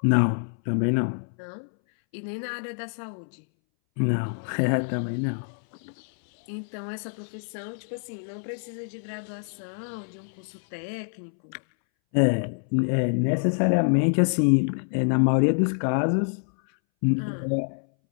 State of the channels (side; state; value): right; silent; 61 dB below the other